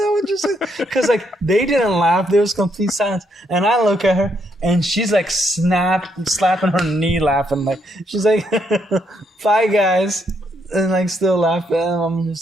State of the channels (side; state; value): both; normal; correlation 0.75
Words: would you say? Because like they didn't laugh. There was complete silence. And I look at her, and she's like slapping her knee, laughing. Like, she's like, "Bye, guys," and like still laughing. And I'm